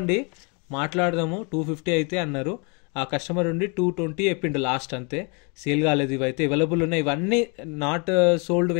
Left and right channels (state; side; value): quieter; right; 33.6 dB